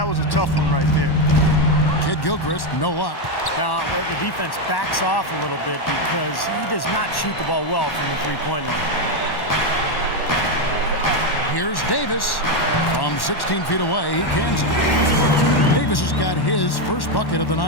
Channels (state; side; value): late; right; 1.1 ms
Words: was a tough one right there. Kid Gilchrist, no luck. Now, the defense backs off a little bit because he does not shoot the ball well from the three-point line. Here's Davis. From 16 feet away, he cans it. Davis has got his first bucket of the